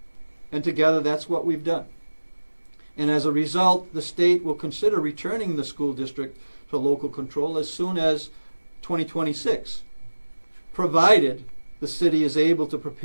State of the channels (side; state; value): both; inverted; correlation -1.00